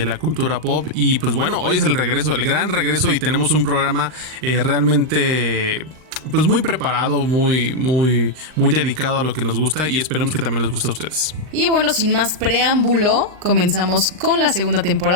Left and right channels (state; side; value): late; left; 39 ms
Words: cultura pop. Y pues bueno, hoy es el regreso, el gran regreso, y tenemos un programa realmente pues muy preparado, muy dedicado a lo que nos gusta, y esperemos que también les guste a ustedes. Y bueno, sin más preámbulo, comenzamos con la segunda